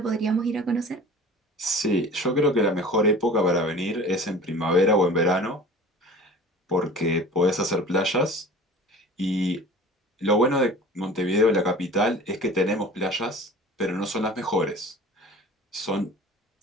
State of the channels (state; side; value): normal; both; correlation 0.41